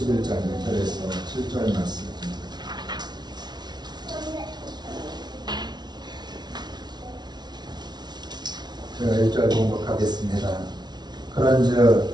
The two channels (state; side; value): late; left; 0.20 ms